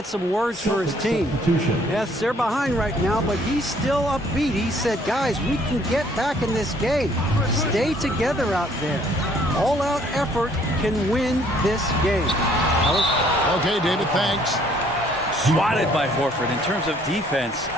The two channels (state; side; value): normal; both; correlation 0.62